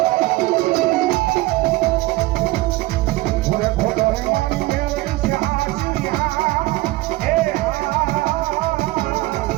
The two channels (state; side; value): quieter; left; 19.6 dB